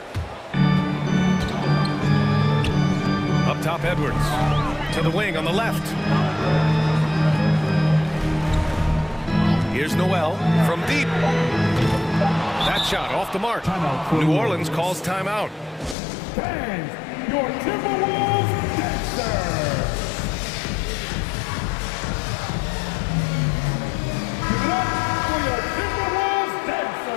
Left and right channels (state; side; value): drops out; right; at 16.0 s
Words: Up top, Edwards. To the wing on the left. Here's Noel from deep. That shot off the mark. New Orleans calls timeout. Bang! Your Timberwolves dancer! Give it up for your Timberwolves